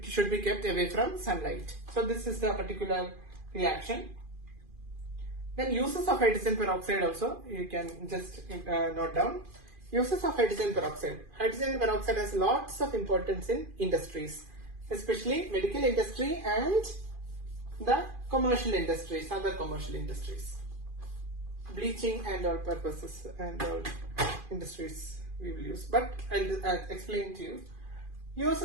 should be kept away from sunlight. So this is the particular reaction. Then uses of hydrogen peroxide also you can just note down. Uses of hydrogen peroxide. Hydrogen peroxide has lots of importance in industries, especially medical industry and the commercial industries, other commercial industries. Bleaching and all purposes and all industries we will use. But I'll explain to you.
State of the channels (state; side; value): late; left; 2.5 ms